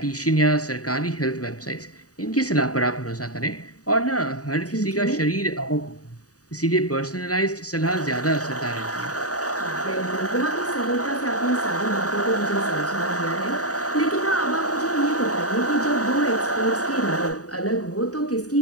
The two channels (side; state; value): right; late; 0.67 ms